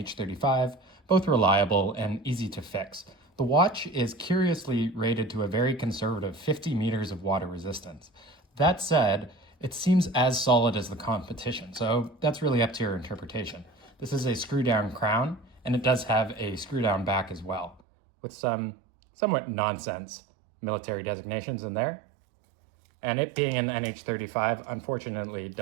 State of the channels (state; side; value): drops out; left; at 17.8 s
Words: both reliable and easy to fix. The watch is curiously rated to a very conservative 50 meters of water resistance. That said, it seems as solid as the competition, so that's really up to your interpretation. This is a screw-down crown, and it does have a screw-down back as well, with some somewhat nonsense military designations in there. And it being an NH35, unfortunately,